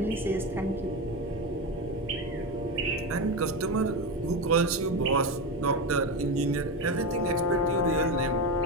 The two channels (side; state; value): both; normal; correlation 0.16